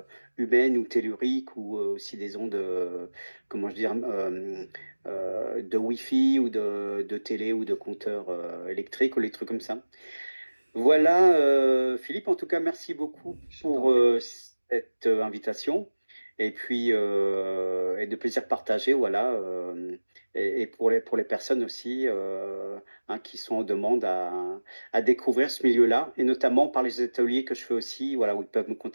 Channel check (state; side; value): inverted; both; correlation -1.00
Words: humaine ou tellurique ou aussi des ondes, comment je dire, de Wi-Fi ou de télé ou de compteurs électriques ou les trucs comme ça. Voilà, Philippe, en tout cas, merci beaucoup Je t'en pour prie. cette invitation et puis et de plaisir partagé, voilà, et pour les personnes aussi hein, qui sont en demande à découvrir ce milieu-là, et notamment par les ateliers que je fais aussi, voilà, où ils peuvent me